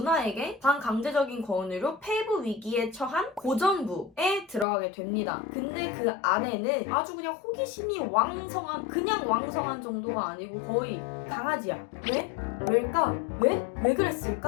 반강제적인 권유로 폐부 위기에 처한 고전부에 들어가게 됩니다. 근데 그 아내는 아주 그냥 호기심이 왕성한 그냥 왕성한 정도가 아니고 거의 강아지야. 왜? 왜일까? 왜? 왜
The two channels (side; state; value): right; drops out; at 4.7 s